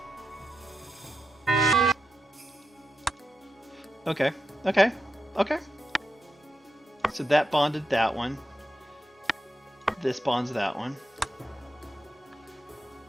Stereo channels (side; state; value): both; normal; correlation 0.88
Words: Okay. So that bonded that one. This bonds that one.